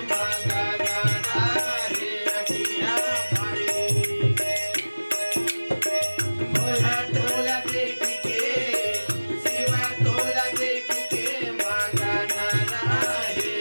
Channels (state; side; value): inverted; both; correlation -1.00